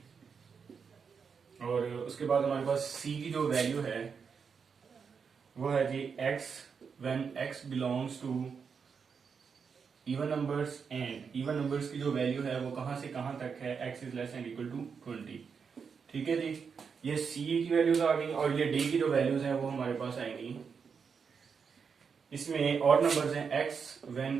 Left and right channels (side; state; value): left; quieter; 6.1 dB